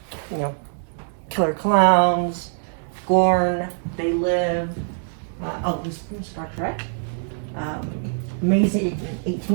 you know, killer clowns, Gorn, They Live, these from Star Trek. Amazing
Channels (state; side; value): silent; left; digital silence